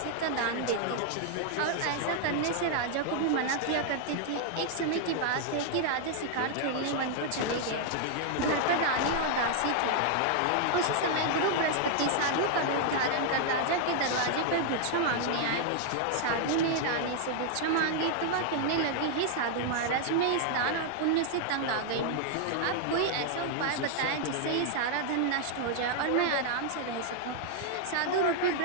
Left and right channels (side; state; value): both; different; correlation 0.00